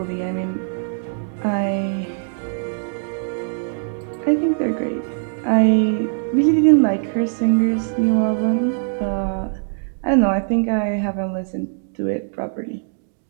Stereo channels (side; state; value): left; silent; digital silence